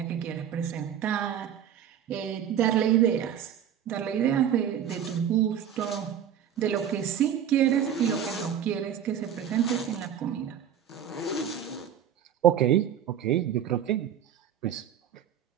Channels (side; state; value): left; quieter; 9.3 dB